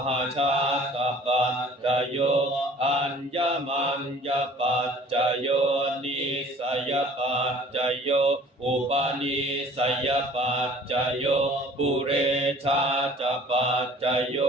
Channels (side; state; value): both; normal; correlation 0.50